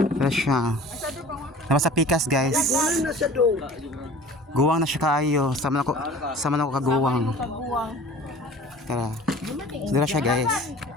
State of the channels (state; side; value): normal; both; correlation 0.44